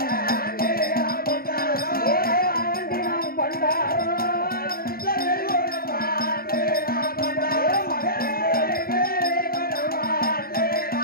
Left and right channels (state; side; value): late; right; 0.43 ms